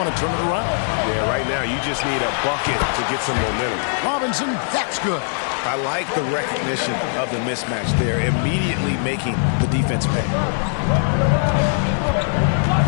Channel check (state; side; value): silent; right; 65 dB below the other